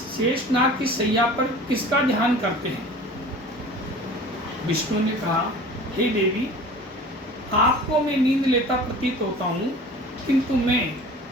शेषनाग की शैया पर किसका ध्यान करते हैं? विष्णु ने कहा, हे देवी, आपको मैं नींद लेता प्रतीत होता हूँ, किंतु मैं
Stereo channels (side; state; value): both; normal; correlation 0.42